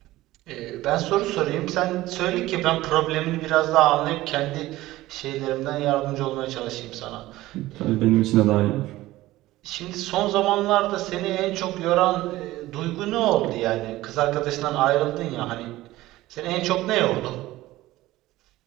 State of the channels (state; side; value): quieter; left; 17.0 dB